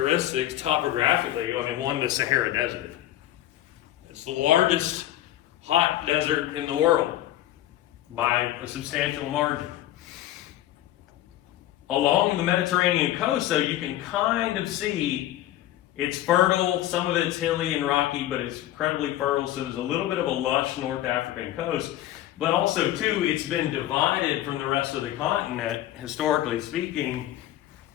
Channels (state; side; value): quieter; right; 13.7 dB